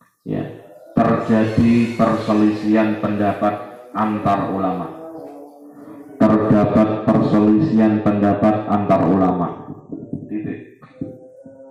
ya, terjadi perselisihan pendapat antar ulama.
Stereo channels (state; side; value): identical; both; correlation 1.00